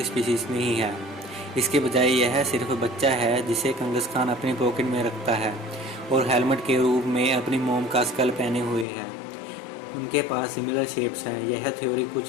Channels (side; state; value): right; drops out; at 8.8 s